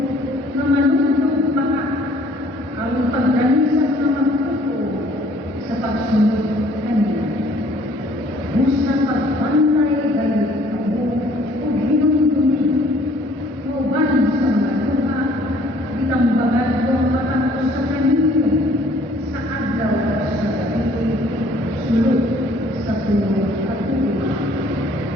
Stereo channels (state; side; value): normal; both; correlation 0.57